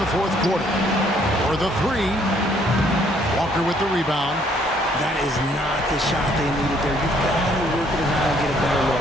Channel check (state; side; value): normal; both; correlation 0.65